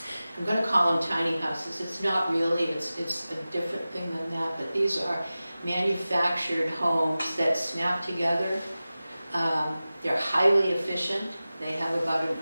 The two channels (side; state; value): both; inverted; correlation -0.96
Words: going to call them tiny houses. It's not really, it's a different thing than that, but these are manufactured homes that snap together. They're highly efficient. They have about an